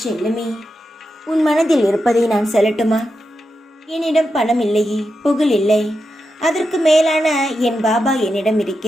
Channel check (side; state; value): both; normal; correlation 0.88